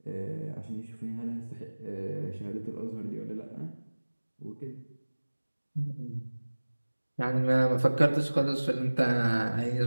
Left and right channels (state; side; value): inverted; both; correlation -1.00